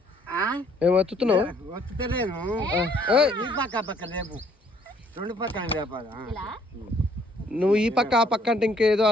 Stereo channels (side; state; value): both; normal; correlation 0.63